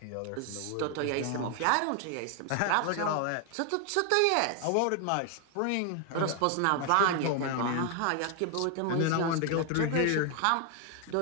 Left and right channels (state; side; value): different; both; correlation 0.01